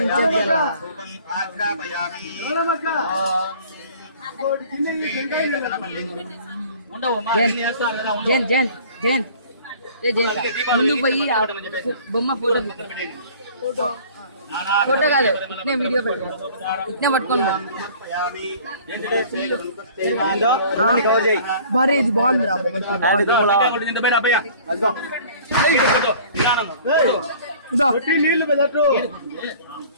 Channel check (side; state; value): both; inverted; correlation -0.49